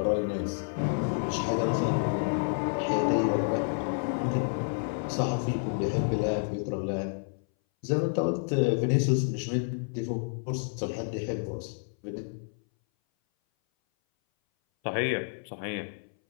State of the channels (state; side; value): silent; right; 58 dB below the other